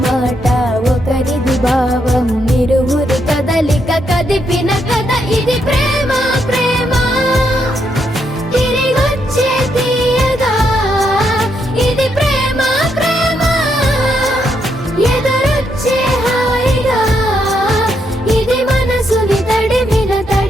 మాట ఒకరిది భావం, ఇరువురి కదలిక కదిపిన కథ ఇది ప్రేమ ప్రేమ. తిరిగొచ్చే తీయగా ఇది ప్రేమ ప్రేమ, ఎదురొచ్చే హాయిగా ఇది మనసుని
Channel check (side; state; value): both; normal; correlation 0.78